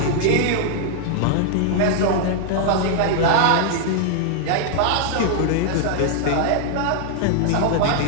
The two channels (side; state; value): both; different; correlation 0.00